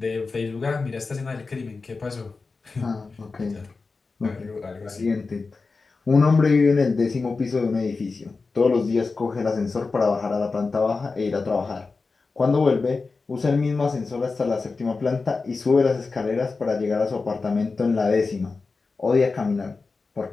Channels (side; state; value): right; quieter; 4.2 dB